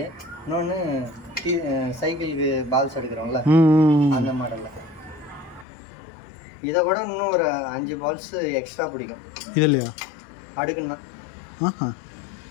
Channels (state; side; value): drops out; right; at 5.7 s